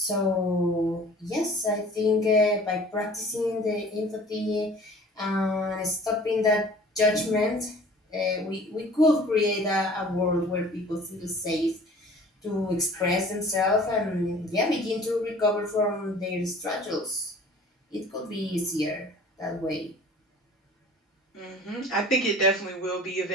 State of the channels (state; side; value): normal; both; correlation 0.47